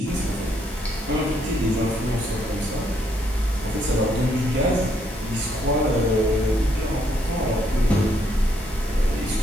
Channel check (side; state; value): both; normal; correlation 0.72